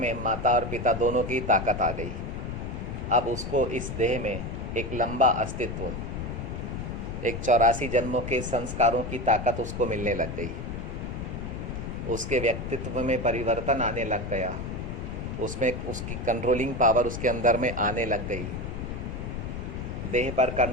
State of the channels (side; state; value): left; noise; rumble, 6 dB below the sound